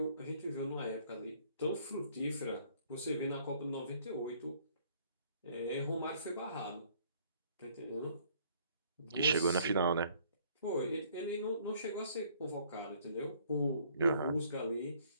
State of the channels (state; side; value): inverted; both; correlation -0.61